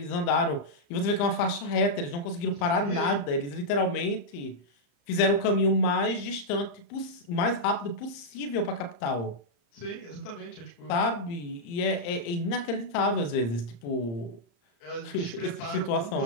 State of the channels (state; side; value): late; right; 34 ms